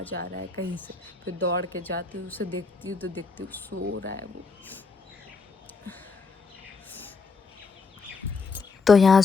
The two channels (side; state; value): right; quieter; 4.5 dB